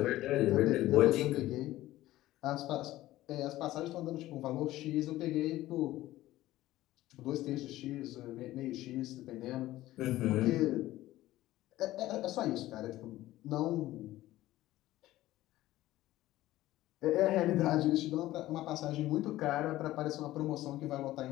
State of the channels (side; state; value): right; quieter; 15.8 dB